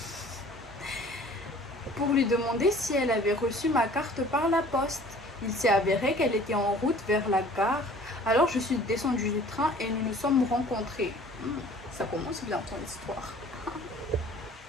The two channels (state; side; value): normal; both; correlation 0.50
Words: Pour lui demander si elle avait reçu ma carte par la poste. Il s'est avéré qu'elle était en route vers la gare. Alors je suis descendue du train et nous nous sommes rencontrés. Ça commence bien ton histoire.